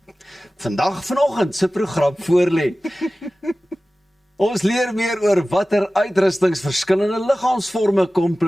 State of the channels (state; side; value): normal; both; correlation 0.96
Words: se program voorlê. Ons leer meer oor watter uitrustings verskillende liggaamsvorme